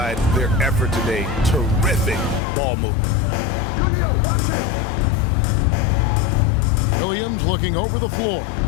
their effort today. Terrific ball movement. Watch him. Williams looking over the floor.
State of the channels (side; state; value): right; drops out; at 2.4 s